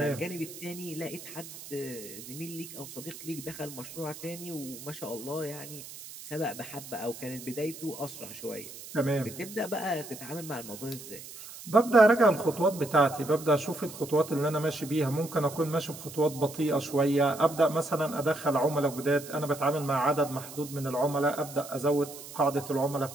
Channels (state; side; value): noise; right; hiss, 14 dB below the sound